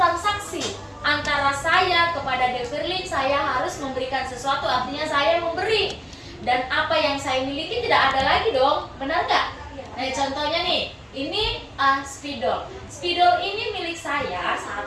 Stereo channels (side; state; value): both; identical; correlation 1.00